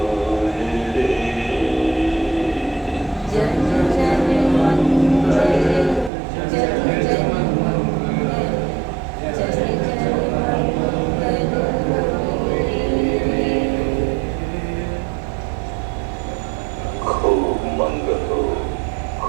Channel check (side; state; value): left; drops out; at 6.1 s